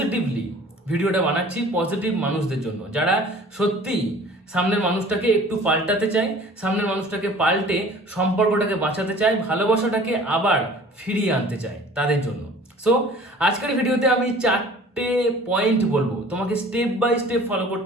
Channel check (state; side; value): normal; both; correlation 0.47